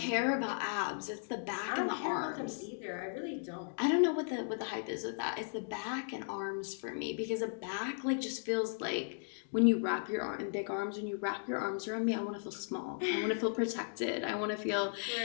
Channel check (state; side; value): silent; right; digital silence